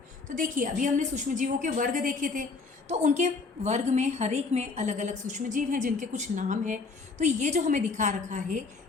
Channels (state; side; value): quieter; right; 4.2 dB